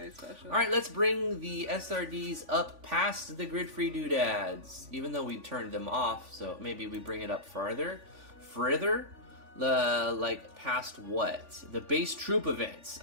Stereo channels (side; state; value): left; late; 3.5 ms